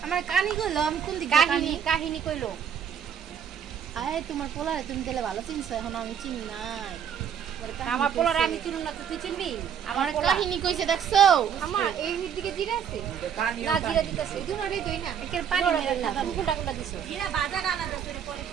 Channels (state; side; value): quieter; left; 8.2 dB